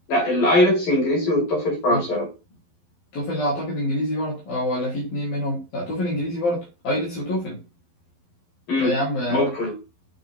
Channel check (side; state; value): right; late; 11 ms